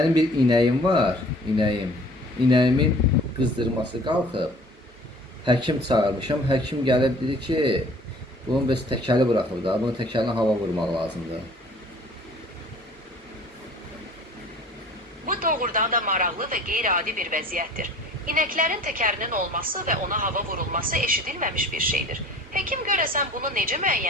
bir inəyim var, inəyim. İnəyimin qızdırması qalxıb. Həkim çağırmışam. Həkim gəlib dedi ki, bunun bəs təkəli buraxıb da, bunun təkəlinə hava vurmaq lazımdır. Bu doğrudan da maraqlı və qeyri-adi bir vəziyyətdir. İnəklərin təkərinin olması və ona hava vurulması eşidilməmiş bir şeydir. Həkim görəsən bunu necə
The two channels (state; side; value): normal; both; correlation 0.49